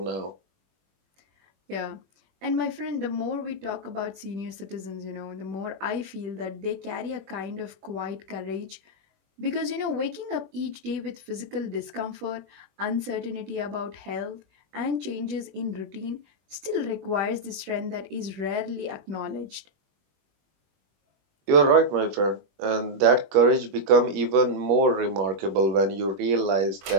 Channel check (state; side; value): late; left; 21 ms